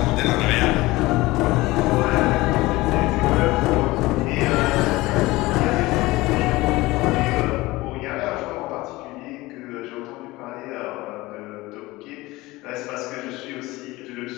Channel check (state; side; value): quieter; right; 20.1 dB